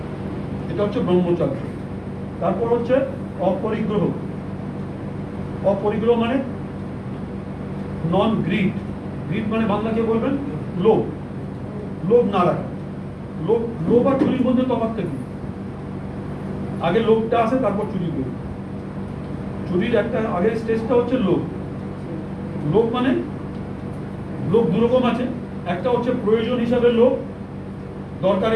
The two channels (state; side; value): identical; both; correlation 1.00